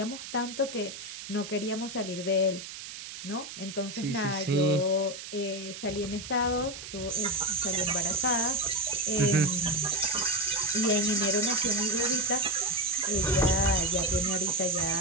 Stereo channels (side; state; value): right; noise; hiss, 11 dB below the sound